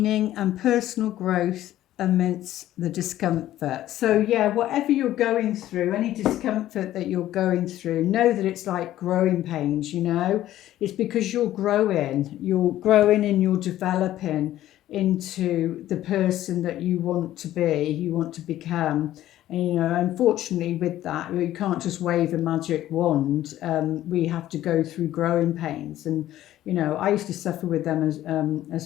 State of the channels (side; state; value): right; quieter; 13.6 dB